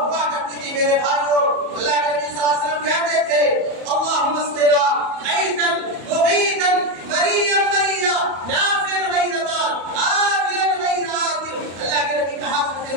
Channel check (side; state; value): left; late; 34 ms